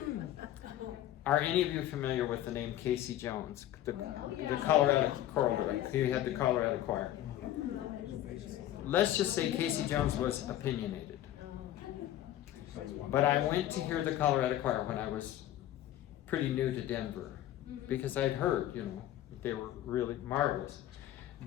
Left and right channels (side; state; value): right; quieter; 13.0 dB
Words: Are any of you familiar with the name Casey Jones, the Colorado choral director? He had the Colorado choir. Let's just say Casey Jones was opinionated. But I went to hear the Colorado choir when I was pretty new to Denver, because I'd heard, you know, they were really marvelous.